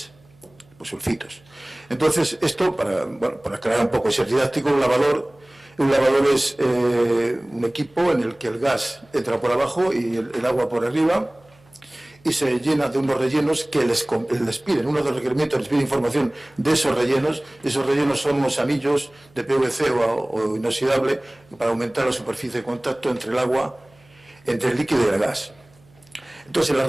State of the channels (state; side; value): noise; right; hum, 30 dB below the sound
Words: pues sulfitos. Entonces, esto, para aclarar un poco, es didáctico. Un lavador es un equipo en el que el gas entra por abajo y el agua por arriba, y se llena de unos rellenos que les piden, uno de los requerimientos les pide información de esos rellenos. Esos rellenos son unos anillos de PVC o inoxidable para aumentar la superficie de contacto entre el agua, entre el líquido y el gas. Entonces, en las